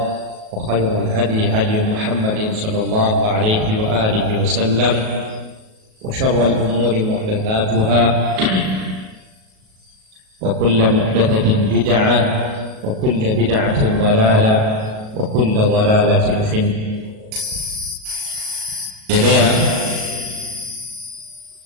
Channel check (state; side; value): late; left; 37 ms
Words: وخير الهدي هدي محمد صلى الله عليه وآله وسلم، وشر الأمور محدثاتها، وكل محدثة بدعة، وكل بدعة ضلالة، وكل ضلالة في النار.